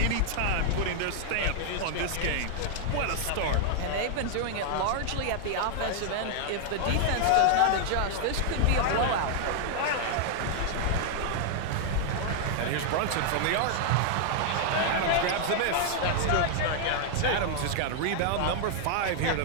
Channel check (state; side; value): different; both; correlation 0.00